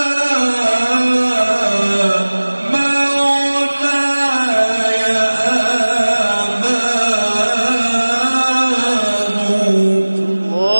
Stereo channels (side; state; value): both; inverted; correlation -1.00